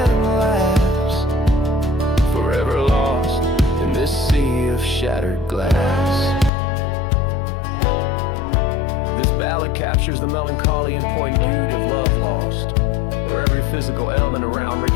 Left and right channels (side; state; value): right; drops out; at 6.5 s